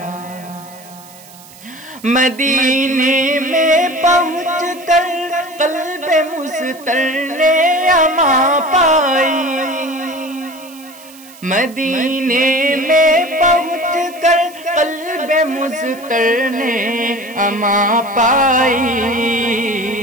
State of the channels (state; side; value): noise; right; hiss, 22 dB below the sound